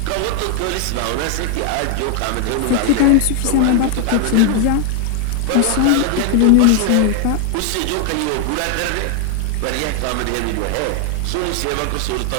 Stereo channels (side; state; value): both; different; correlation 0.00